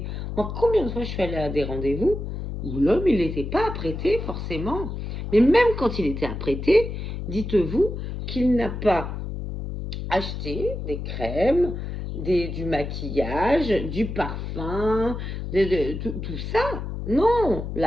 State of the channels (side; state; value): left; noise; hum, 6 dB below the sound